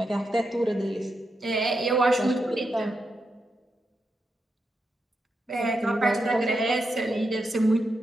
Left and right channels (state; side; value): normal; both; correlation 0.85